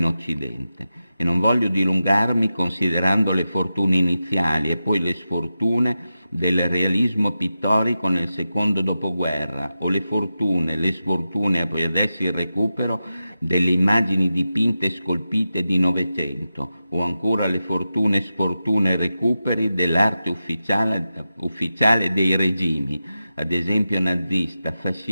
Occidente. E non voglio dilungarmi considerando le fortune iniziali e poi le sfortune del realismo pittorico nel secondo dopoguerra, o le fortune, le sfortune e poi adesso il recupero delle immagini dipinte e scolpite di Novecento, o ancora le fortune, sfortune e recuperi dell'arte ufficiale dei regimi, ad esempio nazista,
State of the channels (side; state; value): both; inverted; correlation -0.91